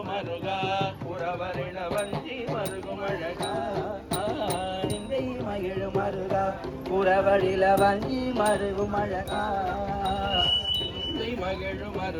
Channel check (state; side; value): identical; both; correlation 1.00